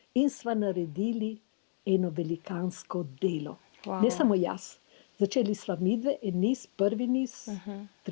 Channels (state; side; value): silent; right; digital silence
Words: in sva naredili eno velikansko delo. Wow. Ne samo jaz. Začeli sva midve, en niz, prvi niz,